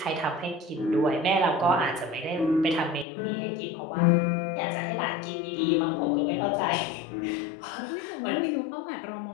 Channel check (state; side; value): drops out; right; at 3.1 s